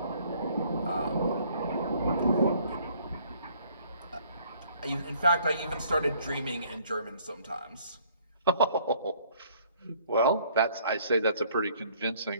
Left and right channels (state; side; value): inverted; both; correlation -0.60